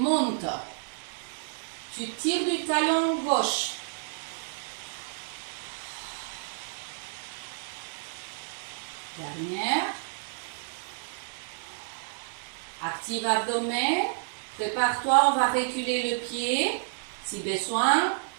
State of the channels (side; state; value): left; silent; 58 dB below the other